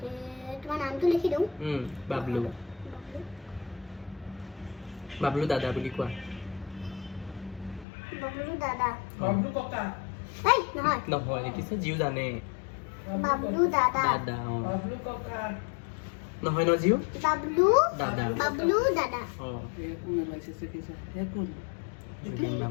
তোমাৰ নামটো লিখি দিওঁ বাবলু বাবলু দাদা বুলি কোৱা বাবলু দাদা বাবলু ককা এই নহয় নহয় দেখিছে জিউ জানে বাবলু দাদা দাদা বাবলু ককা নহয় ন জিউ বাবলু দাদা বাবলু দাদা কোন ওলাইছে চাকিছে হে কোন জুবিন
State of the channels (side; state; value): right; drops out; at 7.9 s